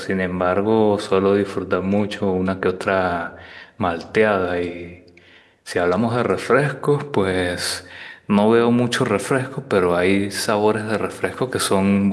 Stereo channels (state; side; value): identical; both; correlation 1.00